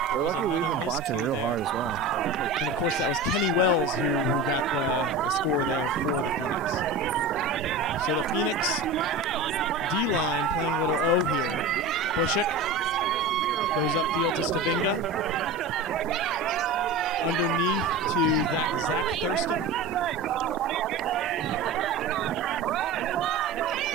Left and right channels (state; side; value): quieter; left; 3.3 dB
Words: Throws another miscue there. And of course, that was Kenny Wells who got the score there for the Phoenix. So the Phoenix D-line playing a little O here. Bushik goes upfield to Stavinga. Underneath to Zach Thurston,